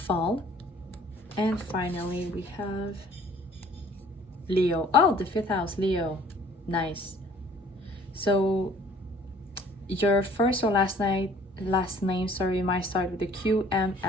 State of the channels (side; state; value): both; normal; correlation 0.55